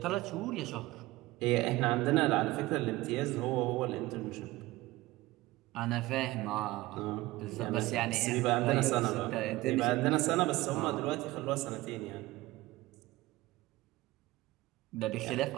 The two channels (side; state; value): left; quieter; 18.9 dB